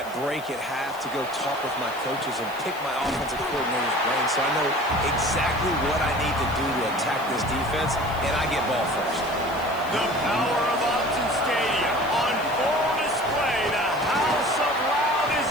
break at half to go talk with my coaches and pick my offensive coordinator's brain so I know exactly what I need to do to attack this defense, and I get ball first. The power of Upton Stadium on full display. The house of loud is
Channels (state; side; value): noise; left; hiss, 20 dB below the sound